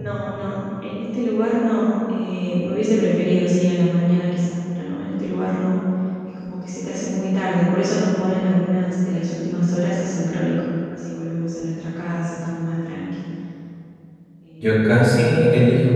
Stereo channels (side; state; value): both; identical; correlation 1.00